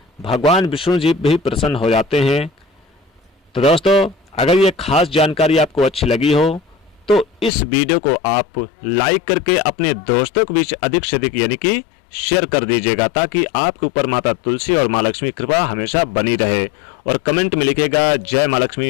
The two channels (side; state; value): right; drops out; at 7.5 s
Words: भगवान विष्णु जी भी प्रसन्न हो जाते हैं। तो दोस्तों, अगर ये खास जानकारी आपको अच्छी लगी हो तो इस वीडियो को आप लाइक करके अपने दोस्तों के बीच अधिक से अधिक यानी कि शेयर कर दीजिएगा, ताकि आपके ऊपर माता तुलसी और माँ लक्ष्मी कृपा हमेशा बनी रहे। और कमेंट में लिखिएगा जय माँ